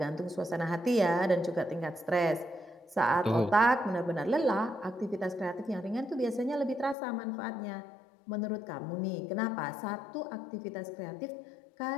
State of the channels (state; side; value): drops out; right; at 7.0 s